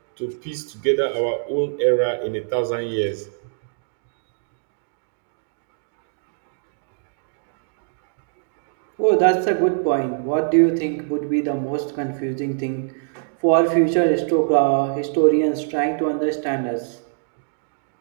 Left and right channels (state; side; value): silent; left; digital silence